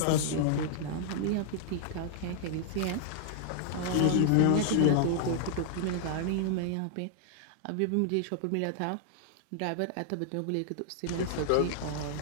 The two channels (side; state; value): both; different; correlation -0.01